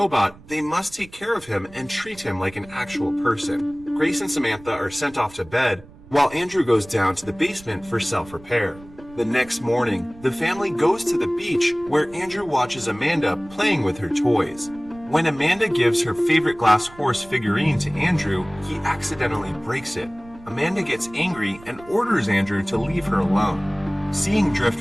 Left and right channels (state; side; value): noise; right; rumble, 22 dB below the sound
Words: they must take care of him and treat him like an actual person. Grace and Samantha are sent off to bed, while Andrew goes down to the basement for self-repair. The next morning, the family goes to the beach where Andrew watches Amanda playing with her toys. When Amanda gives her favorite glass horse figurine to Andrew, he accidentally breaks it. Amanda gets angry and orders Andrew to leave her alone. Seeing